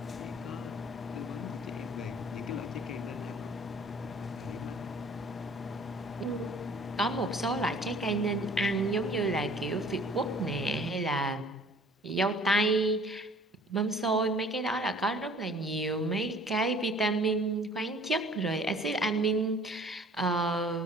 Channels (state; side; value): normal; both; correlation 0.52